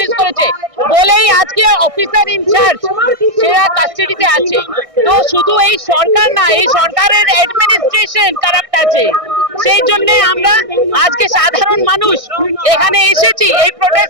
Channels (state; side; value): late; left; 1.6 ms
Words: করেছে বলেই আজকে অফিসার ইনচার্জ সেরা কাস্টাডিতে আছে। তো শুধু এই সরকার না, এই সরকারের অ্যাডমিনিস্ট্রেশন কারাপ্ট আছে। সেই জন্য আমরা আজকে সাধারণ মানুষ এখানে এসেছি এই